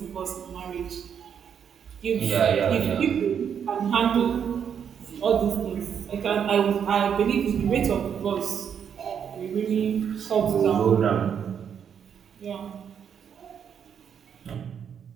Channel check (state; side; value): quieter; left; 7.9 dB